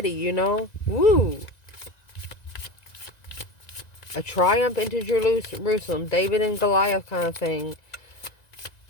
you know? Woo! A triumph into Jerusalem, David and Goliath kind of thing.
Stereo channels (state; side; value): late; right; 1.9 ms